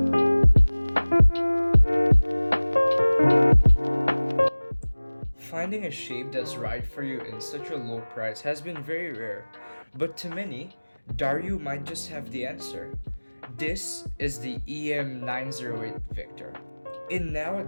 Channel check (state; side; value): inverted; both; correlation -1.00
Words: Finding a shape that's right for you in such a low price has been very rare, but to many, Dareu might just have the answer. This is the EM908 Victor. In